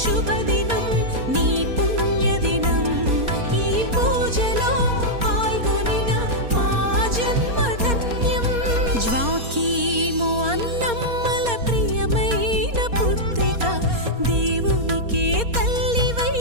శుభదినం, నీ పుణ్యదినం. ఈ పూజలో పాల్గొనిన మా జన్మధన్యం. జ్వాకీ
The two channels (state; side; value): late; left; 4.3 ms